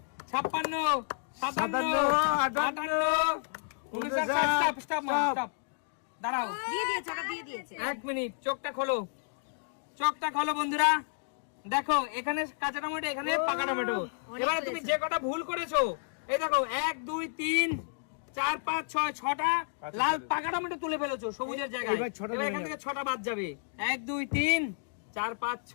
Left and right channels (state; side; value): silent; right; digital silence